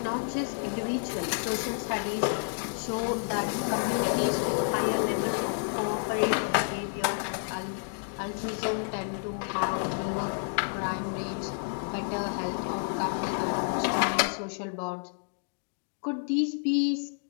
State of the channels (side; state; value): right; silent; digital silence